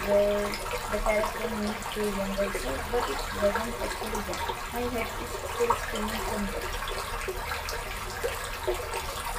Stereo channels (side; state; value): both; identical; correlation 1.00